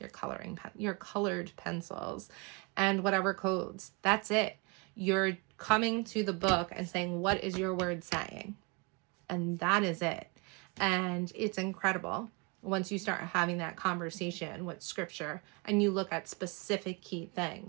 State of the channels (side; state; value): left; quieter; 29.6 dB